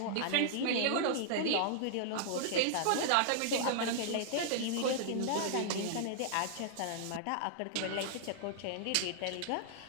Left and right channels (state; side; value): different; both; correlation -0.01